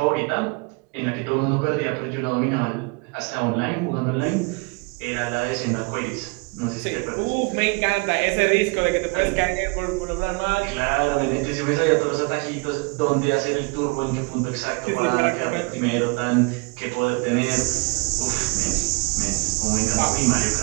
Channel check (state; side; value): quieter; left; 30.5 dB